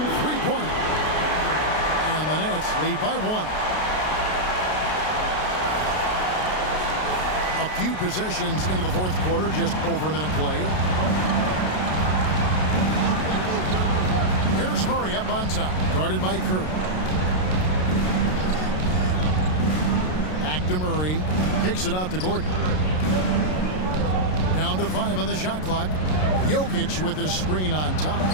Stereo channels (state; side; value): late; right; 33 ms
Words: three-pointer. And the Nets lead by 1. A few possessions into the fourth quarter, just over a minute played. Here's Murray up on top, guarded by Curry. Back to Murray, kicks it out to Gordon. Down to 5 on the shot clock. Jokic with his screen on